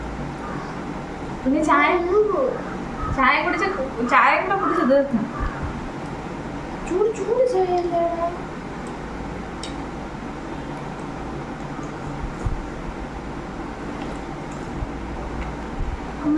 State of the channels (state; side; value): identical; both; correlation 1.00